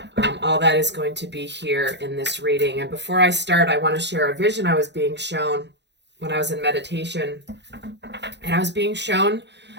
All that is going to be here in this reading. And before I start, I want to share a vision I was being shown when I was in meditation. And I was being shown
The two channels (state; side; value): late; left; 0.51 ms